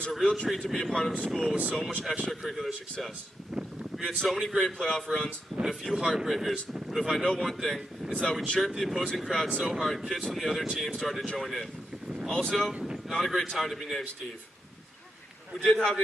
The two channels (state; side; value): normal; both; correlation 0.85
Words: a real treat to be a part of a school with so much extracurricular success. We had so many great playoff runs and a few heartbreakers, but if I know one thing, it's that we chirped the opposing crowd so hard kids from the other team started to join in. Also, not a great time to be named Steve. We did have an